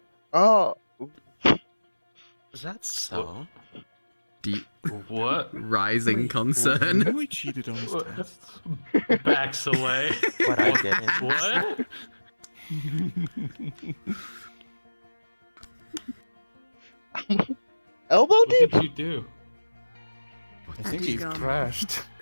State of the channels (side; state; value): both; inverted; correlation -1.00